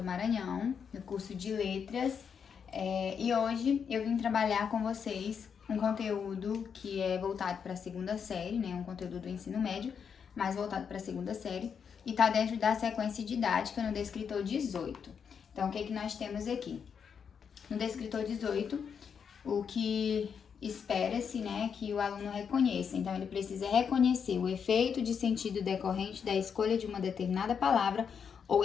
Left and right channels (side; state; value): right; quieter; 6.9 dB